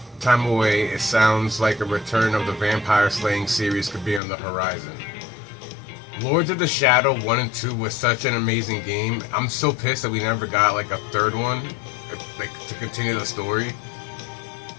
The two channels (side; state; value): right; drops out; at 4.2 s